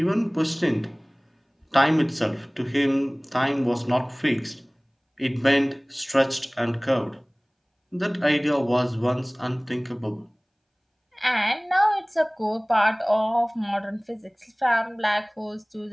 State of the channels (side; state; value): both; identical; correlation 1.00